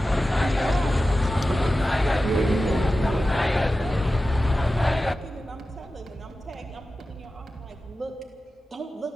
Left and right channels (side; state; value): both; normal; correlation 0.94